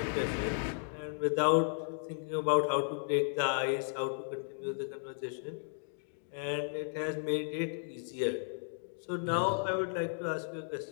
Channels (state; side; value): silent; right; digital silence